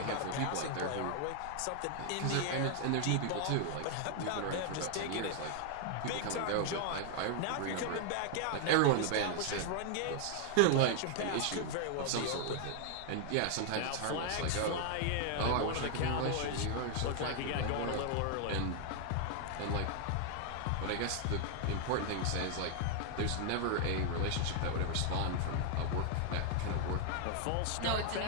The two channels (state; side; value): different; both; correlation 0.00